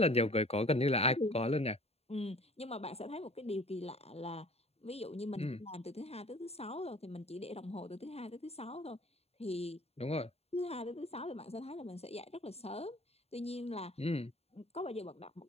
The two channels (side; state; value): right; late; 0.30 ms